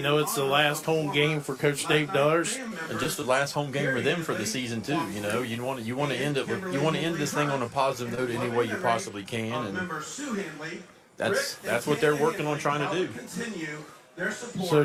it's the last home game for Coach Dave Dars, and just the last home game for them for the season too. You want to end this thing on a positive note any way you possibly can, and that's what they're working on trying to do. So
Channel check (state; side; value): identical; both; correlation 1.00